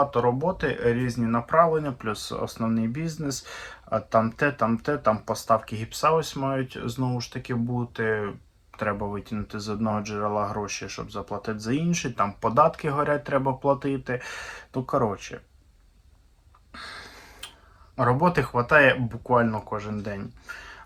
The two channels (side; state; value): both; identical; correlation 1.00